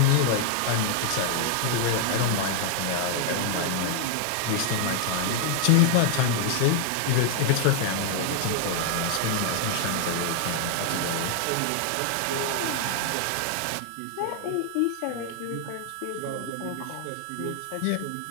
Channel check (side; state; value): both; different; correlation 0.00